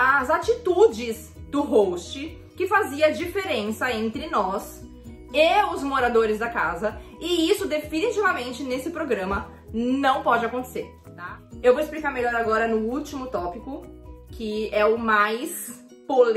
atitudes do host, que fazia diferença entre nós e os moradores da casa, e isso definitivamente nesse programa não pode acontecer, tá? Eu vou explicar melhor agora no último tópico, que é o mais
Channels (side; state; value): both; identical; correlation 1.00